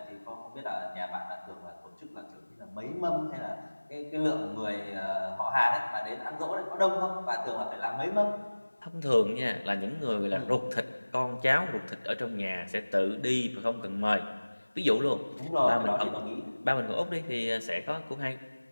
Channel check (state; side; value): inverted; both; correlation -1.00